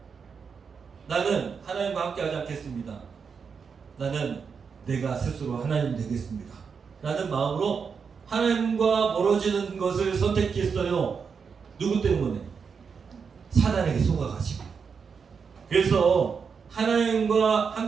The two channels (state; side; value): quieter; left; 5.9 dB